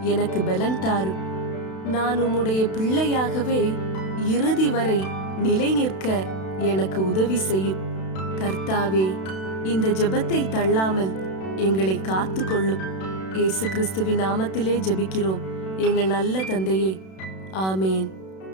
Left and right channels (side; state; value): right; late; 32 ms